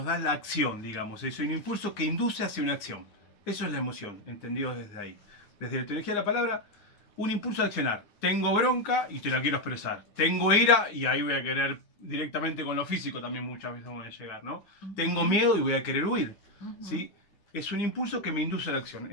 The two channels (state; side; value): late; right; 9.7 ms